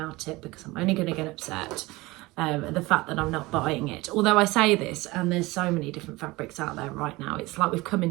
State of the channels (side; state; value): left; quieter; 21.3 dB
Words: it because I'm only going to get upset at the fact that I'm not buying it. Although I say this, and there's so many different fabrics out there right now. It's like we've come